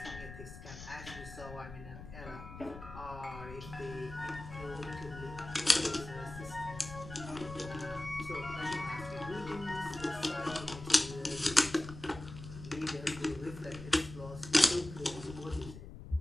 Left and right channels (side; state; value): left; noise; rumble, 13 dB below the sound